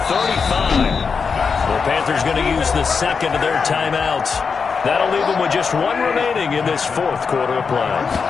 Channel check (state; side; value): quieter; right; 5.5 dB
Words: 35. The Panthers going to use the second of their timeouts. That'll leave them with just 1 remaining in this 4th quarter of play.